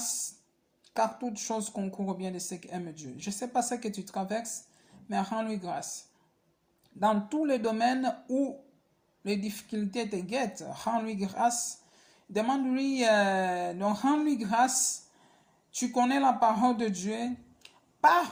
car toute chose concourt au bien de ceux qui aiment Dieu. Je ne sais pas ce que tu traverses, mais rends-lui grâce. Dans tous les domaines où les difficultés te guettent, rends-lui grâce. Demande-lui, donc rends-lui grâce. Tu connais la parole de Dieu.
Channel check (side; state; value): both; identical; correlation 1.00